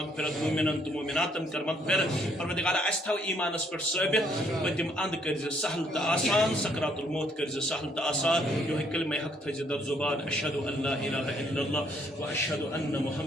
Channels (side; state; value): both; normal; correlation 0.67